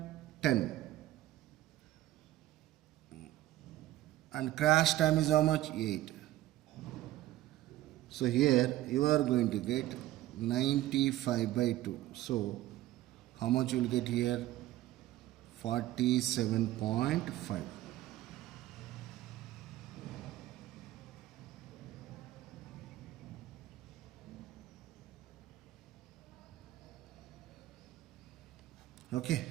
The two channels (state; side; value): quieter; left; 15.1 dB